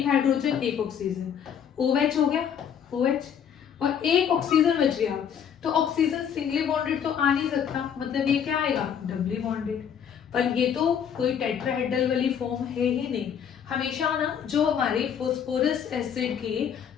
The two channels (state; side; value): quieter; right; 8.2 dB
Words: हाइड्रोजन एक ऑक्सीजन, OH हो गया, OH, और एक ऑक्सीजन बच गया। तो ऑक्सीजन सिंगली बॉन्डेड तो आ नहीं सकता, मतलब ये क्या आएगा, डबली बॉन्डेड। पर ये तो कोई टेट्राहेड्रल वाली फॉर्म है ही नहीं। हमेशा ना जो हमारे फॉस्फोरस एसिड के